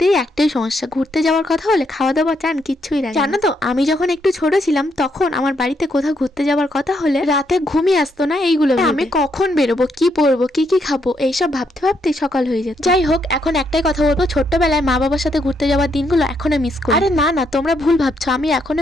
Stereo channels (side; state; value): both; normal; correlation 0.76